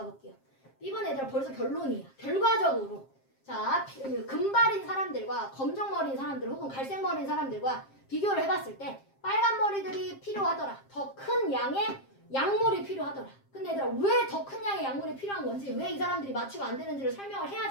B번 얘들아 벌써 결론이야. 결과적으로 자 금발인 사람들과 검정머리인 사람들 혹은 갈색머리인 사람들과 비교를 해봤을 때 빨간 머리들이 필요하더라. 더 큰 양의 약물이 필요하더라. 근데 얘들아 왜 더 큰 양의 약물이 필요한 건지 왜 이 사람들이 마취가 안 되는지를 설명을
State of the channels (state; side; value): late; right; 7.5 ms